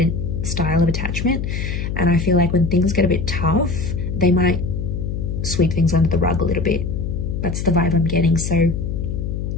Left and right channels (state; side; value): noise; left; hum, 3 dB below the sound